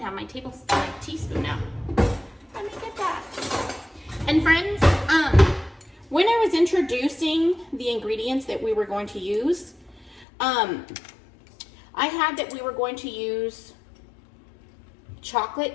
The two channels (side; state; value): right; drops out; at 10.2 s